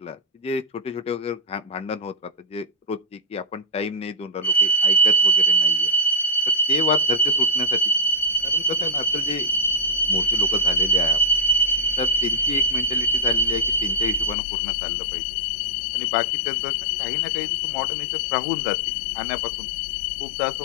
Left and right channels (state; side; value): drops out; right; at 14.4 s